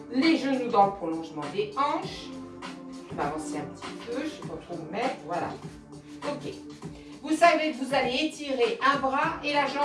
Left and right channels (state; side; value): identical; both; correlation 1.00